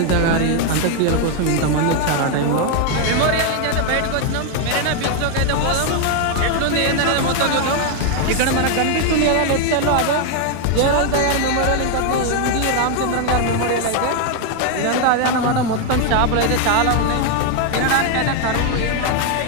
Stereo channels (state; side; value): different; both; correlation 0.01